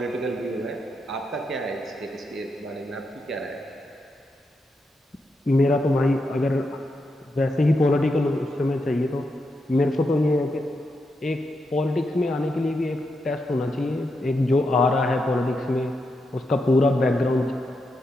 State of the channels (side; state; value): both; normal; correlation 0.84